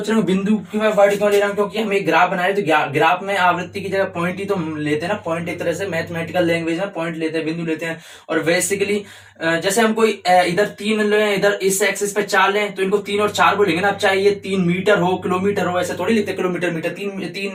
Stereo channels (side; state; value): both; identical; correlation 1.00